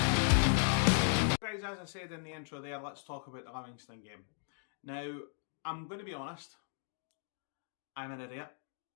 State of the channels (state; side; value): silent; right; 53 dB below the other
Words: Guys, as I said in the intro there, let's talk about the Livingston game. Now, I'm going to be honest, I'm an idiot.